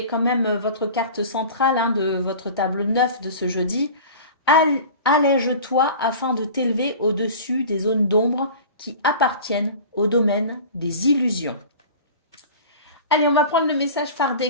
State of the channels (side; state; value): both; inverted; correlation -0.38